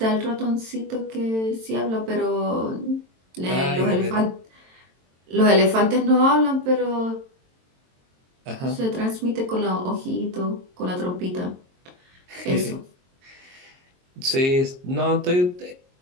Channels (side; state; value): left; late; 22 ms